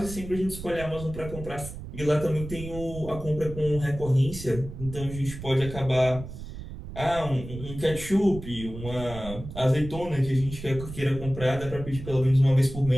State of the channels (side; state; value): right; noise; rumble, 11 dB below the sound